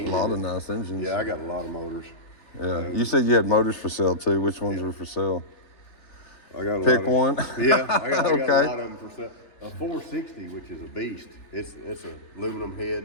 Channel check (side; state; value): right; late; 3.4 ms